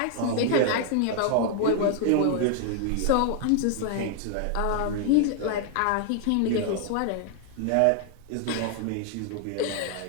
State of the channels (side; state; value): both; different; correlation 0.00